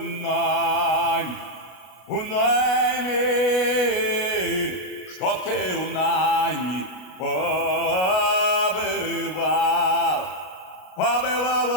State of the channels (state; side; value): late; right; 32 ms